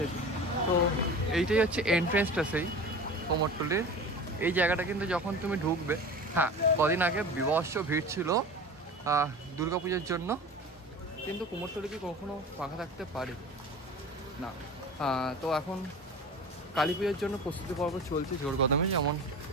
তো এইটাই হচ্ছে এন্ট্রেন্সটা সেই কুমোরটুলির। এই জায়গাটা কিন্তু যখন তুমি ঢুকবে, হ্যাঁ কদিন আগে বিভৎস ভিড় ছিল দুর্গা পুজোর জন্য, কিন্তু কুমোরটুলি কি কখনো ফাঁকা থাকতে পারে না। তো এখন কালী পুজোর জন্য প্রস্তুতি পর্ব চলছে জোর কদমে। যেমন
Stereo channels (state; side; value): normal; both; correlation 0.36